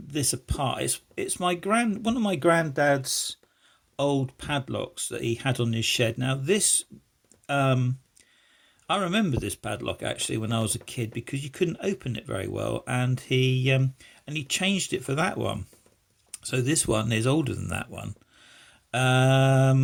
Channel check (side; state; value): both; identical; correlation 1.00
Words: this apart. It's one of my granddad's old padlocks that he had on his shed. Now this um, I remember this padlock actually when I was a kid because you couldn't open it very well, and he changed it for that one. So this one is older than that one.